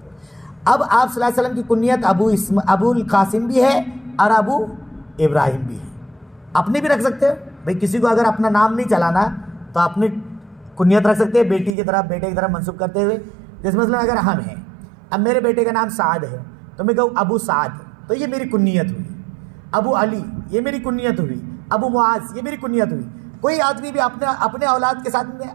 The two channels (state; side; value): drops out; left; at 11.8 s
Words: اب آپ صلی اللہ علیہ وسلم کی کنیت ابو القاسم بھی ہے اور ابو ابراہیم بھی ہے. اپنے بھی رکھ سکتے ہیں بھائی، کسی کو اگر اپنا نام نہیں چلانا تو اپنی کنیت رکھ سکتے ہیں بیٹے کی طرف منسوب کرتے ہوئے. جیسے مثلا اگر ہم ہیں، اب میرے بیٹے کا نام سعد ہے تو میں کہوں ابو سعد، تو یہ میری کنیت ہوئی. ابو علی یہ میری کنیت ہوئی. ابو معاذ یہ میری کنیت ہوئی. کوئی آدمی بھی اپنے اولاد کے ساتھ میں